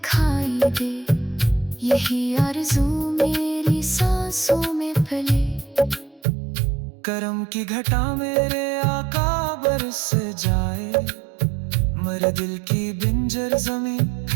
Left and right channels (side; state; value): left; drops out; at 6.2 s